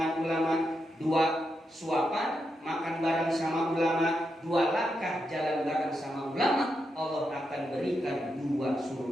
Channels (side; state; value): both; normal; correlation 0.84